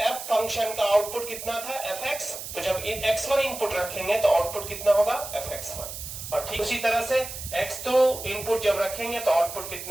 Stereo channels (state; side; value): noise; right; hiss, 9 dB below the sound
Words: f फंक्शन का आउटपुट कितना था? fx। तो जब x1 इनपुट रखेंगे तो आउटपुट कितना होगा? fx1। और ठीक उसी तरह से x2 इनपुट जब रखेंगे तो आउटपुट